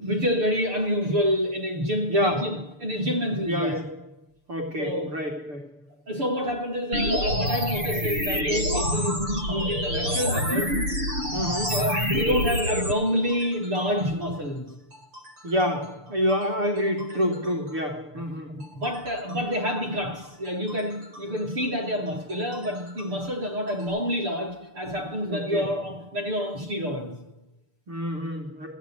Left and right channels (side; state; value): left; late; 6.8 ms